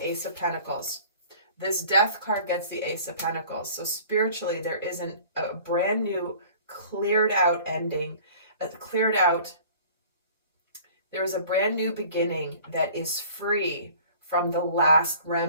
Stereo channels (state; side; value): inverted; both; correlation -0.48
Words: Ace of Pentacles. This Death card gets the Ace of Pentacles. So spiritually, there isn't a brand new, cleared out ending, there is a brand new beginning that is free from the last